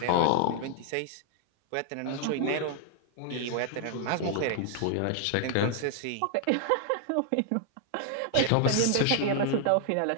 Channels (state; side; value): different; both; correlation 0.00